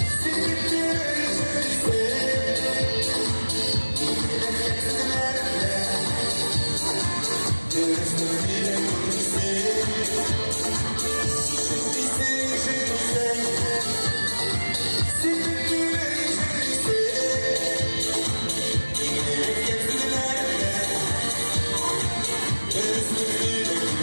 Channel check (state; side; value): inverted; both; correlation -1.00